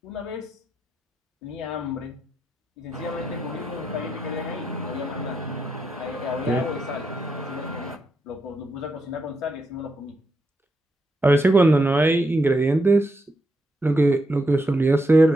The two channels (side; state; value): both; normal; correlation 0.82